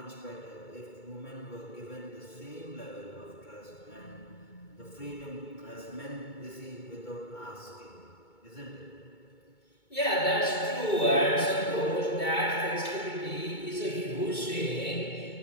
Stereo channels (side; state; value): right; late; 2.2 ms